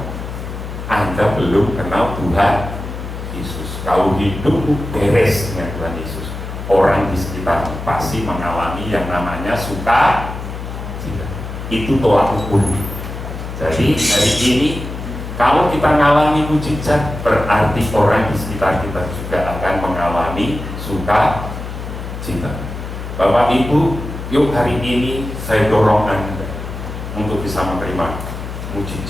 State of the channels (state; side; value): noise; left; hum, 8 dB below the sound